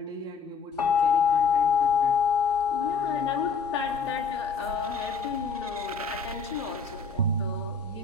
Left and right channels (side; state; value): right; quieter; 5.3 dB